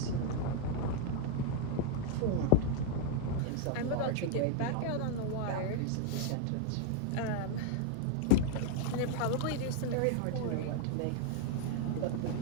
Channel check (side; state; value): both; different; correlation 0.00